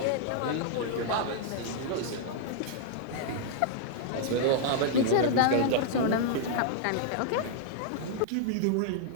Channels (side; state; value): both; different; correlation -0.01